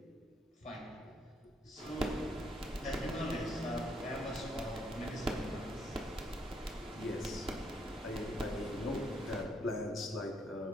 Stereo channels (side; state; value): both; normal; correlation 0.72